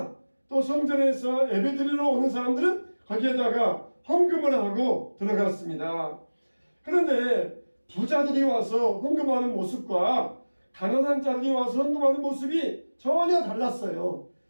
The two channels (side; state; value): both; inverted; correlation -1.00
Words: 또 성전에서 예배드리러 오는 사람들은 거기에다가 헌금을 하고 들어갔습니다. 그런데 부자들이 와서 헌금하는 모습과 가난한 자들이 와서 헌금하는 모습이 전혀 달랐어요.